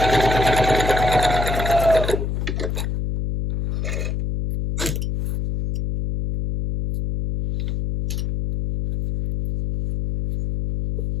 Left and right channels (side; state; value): left; noise; hum, 2 dB below the sound